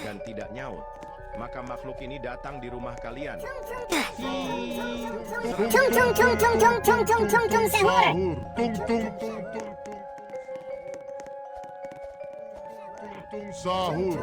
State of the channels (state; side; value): identical; both; correlation 1.00